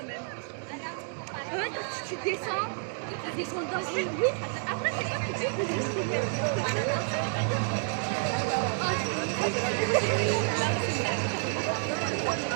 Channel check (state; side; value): silent; left; 58 dB below the other